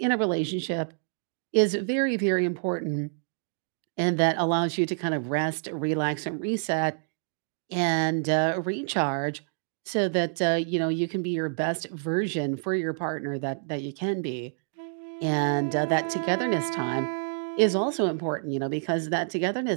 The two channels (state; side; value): silent; left; digital silence